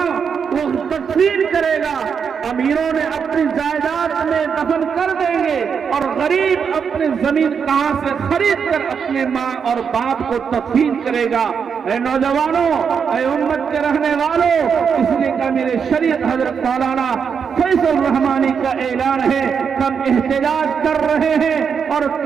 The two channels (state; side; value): quieter; left; 6.6 dB